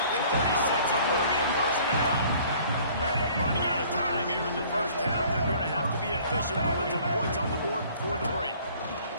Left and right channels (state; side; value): inverted; both; correlation -0.54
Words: the 36. It will be a first down. Running out of time here in the first half. They're going to have to be efficient to put some points on the board before the break.